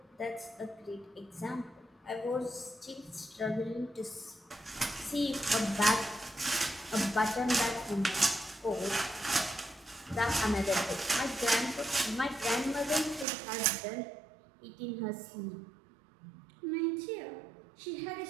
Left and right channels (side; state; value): left; drops out; at 13.2 s